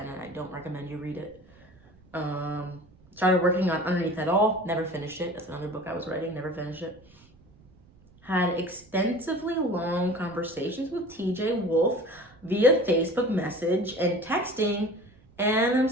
and I don't recommend you read it. Started working on Underneath It All. Never finished it. That's another book I was writing. Never finished it. Had extensively long conversations with TJ Wolf via Facebook message and texting, and I'm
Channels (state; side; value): noise; right; rumble, 27 dB below the sound